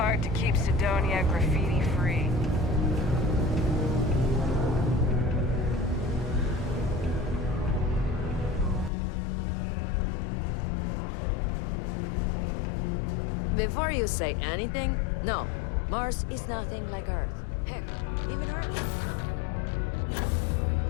to keep Sidonia graffiti-free. Before you say anything, no, Mars is nothing like Earth. Heck, even Earth.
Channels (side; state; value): right; drops out; at 8.9 s